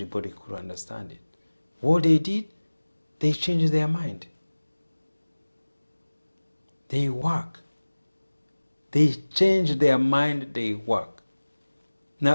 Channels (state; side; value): inverted; both; correlation -1.00